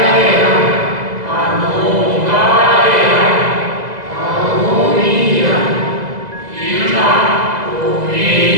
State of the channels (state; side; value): late; left; 2.0 ms